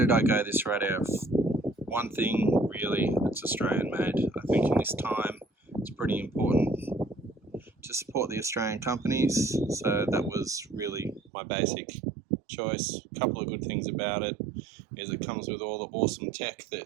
I go this radio? One thing, really, it's Australian made. I think in this time it's pretty important to support the Australian companies, so that was really my basic choice. A couple of good things about it is it comes with all the awesome tech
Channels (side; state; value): left; drops out; at 11.3 s